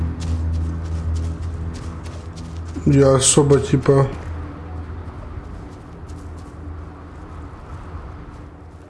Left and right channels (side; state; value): both; identical; correlation 1.00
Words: Я особо типа...